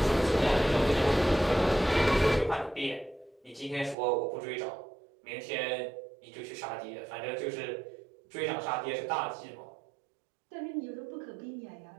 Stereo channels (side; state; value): left; drops out; at 4.0 s